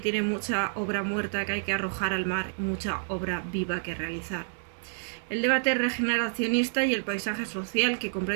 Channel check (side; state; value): left; silent; digital silence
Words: tiene mucha obra muerta que hay que arrojar al mar y mucha obra viva que realizar. El debate regeneracionista y el paisaje social que